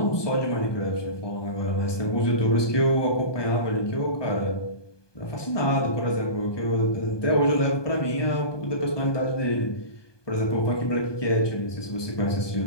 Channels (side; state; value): right; late; 1.2 ms